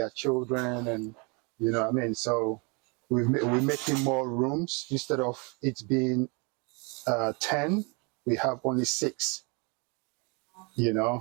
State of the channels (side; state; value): left; quieter; 31.5 dB